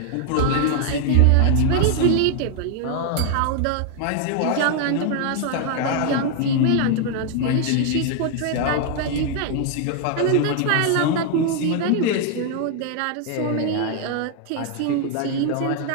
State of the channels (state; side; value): different; both; correlation 0.00